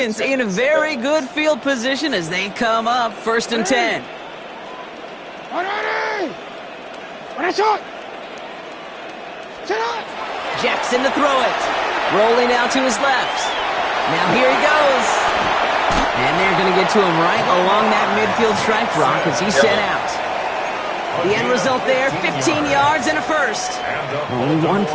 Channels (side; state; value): both; identical; correlation 1.00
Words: in a very good field position as they come up 1st and 10. Jackson to throw it. Rolling out to his left. Now here he goes. And they're going to get to him right along that midfield stripe, Brock, as he's sent out. The end result there, 15 yards and a first. Only one